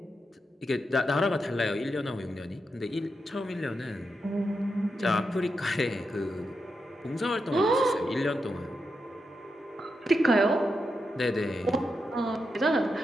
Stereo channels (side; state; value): both; normal; correlation 0.86